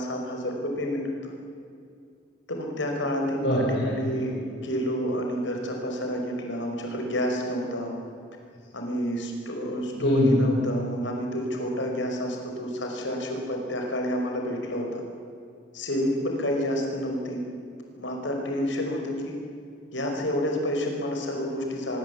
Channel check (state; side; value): normal; both; correlation 0.45